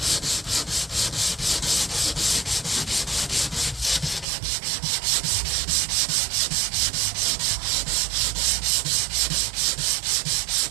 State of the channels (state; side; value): drops out; left; at 4.2 s